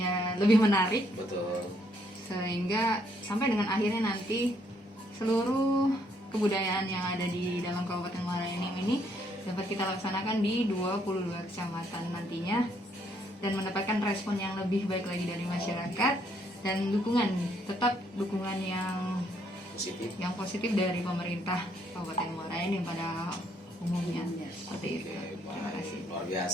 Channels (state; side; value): normal; both; correlation 0.70